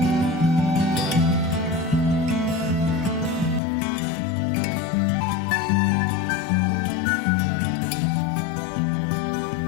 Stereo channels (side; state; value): right; drops out; at 3.6 s